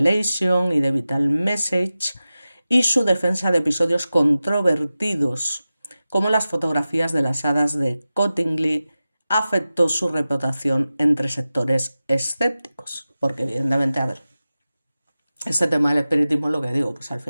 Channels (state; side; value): inverted; both; correlation -0.95